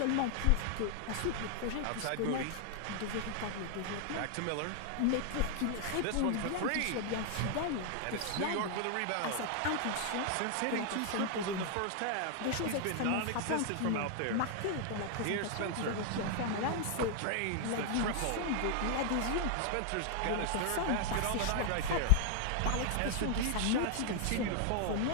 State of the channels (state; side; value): different; both; correlation 0.00